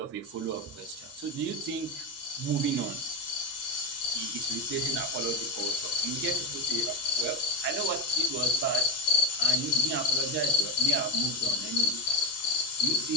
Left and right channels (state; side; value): normal; both; correlation 0.17